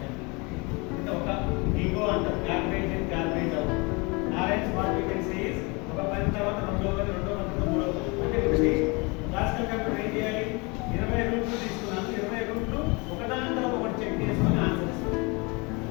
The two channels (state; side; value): quieter; right; 28.3 dB